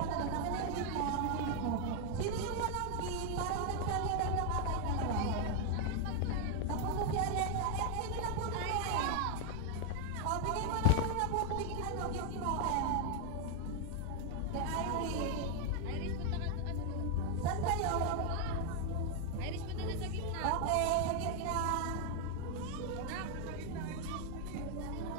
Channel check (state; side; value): different; both; correlation 0.01